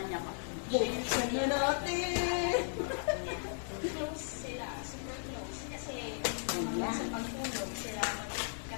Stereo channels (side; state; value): right; silent; digital silence